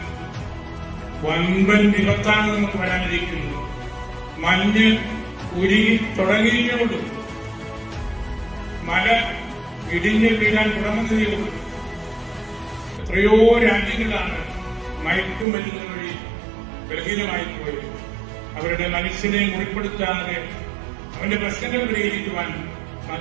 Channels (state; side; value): drops out; left; at 15.5 s